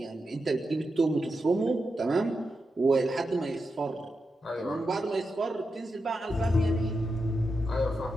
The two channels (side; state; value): both; normal; correlation 0.88